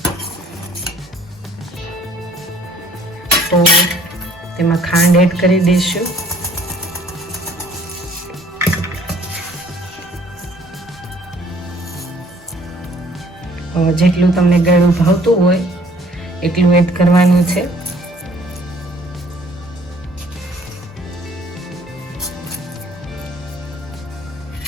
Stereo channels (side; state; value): both; normal; correlation 0.58